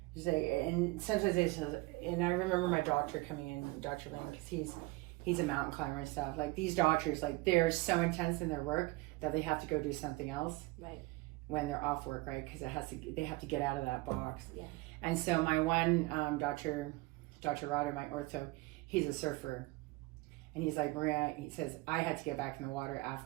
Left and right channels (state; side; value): quieter; left; 22.6 dB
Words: and sometimes and I remember my doctor coming in, Dr. Lane, because he's a mountain climber and stuff. Like, these doctors, like, they're so intense in their work that they have to go do something else. Right. When they're off work, right? Because they have to get out of that box. Yeah. And so my one Dr. Rotter, my ortho, he's a surfer. And he's like, Maria, he says, I had to get back in the water